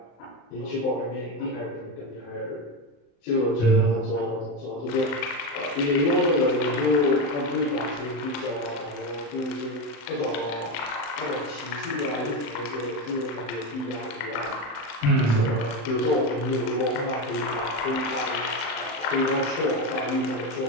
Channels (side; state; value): right; late; 35 ms